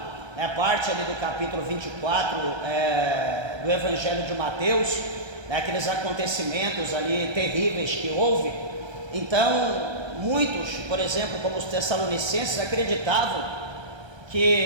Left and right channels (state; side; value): late; left; 1.3 ms